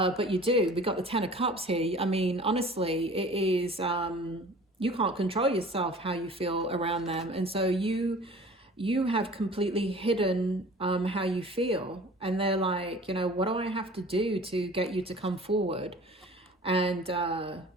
you do. We got the 10 of Cups here. I mean, honestly, it is, you can't control yourself how you feel around them. And so you have completely hidden how you feel. And they're like, what do I have to do to get you to come forward? And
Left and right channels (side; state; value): both; normal; correlation 0.45